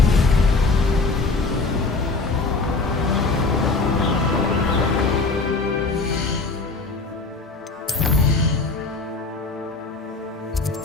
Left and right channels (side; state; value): right; quieter; 3.7 dB